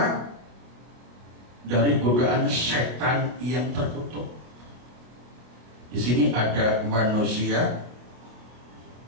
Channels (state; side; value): late; left; 25 ms